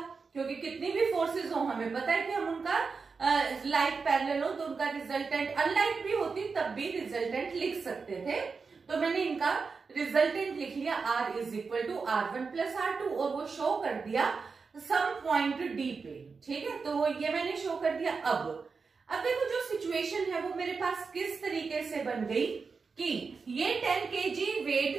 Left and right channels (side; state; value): left; quieter; 4.9 dB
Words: क्योंकि कितनी भी फोर्सेस हो हमें पता है कि हम उनका लाइक पैरेलल हो तो उनका रिजल्टेंट अनलाइक भी होती तब भी रिजल्टेंट लिख सकते थे। तो मैंने इनका रिजल्टेंट लिख लिया R is equal to R1 plus R2, और वो शो कर दिया सम पॉइंट D पे, ठीक है। तो वो ये मैंने शो कर दिया। अब देखो जो सिचुएशन है वो मेरे पास किस तरीके से बन गई कि ये 10 kg